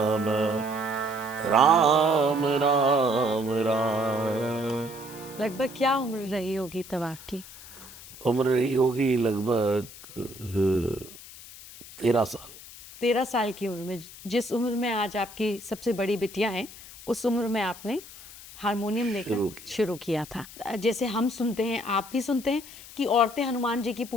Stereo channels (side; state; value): left; noise; hiss, 17 dB below the sound